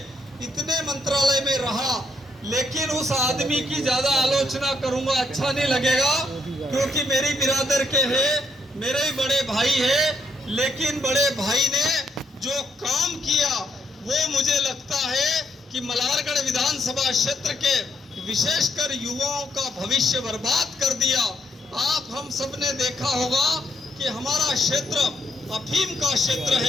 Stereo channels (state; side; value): normal; both; correlation 0.75